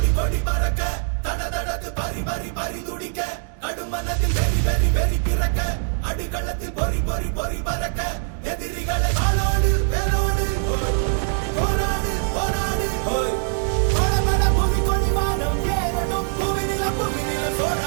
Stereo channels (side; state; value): left; silent; digital silence